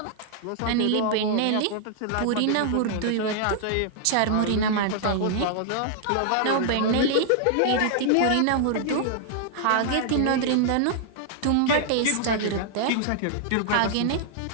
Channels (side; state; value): both; different; correlation -0.01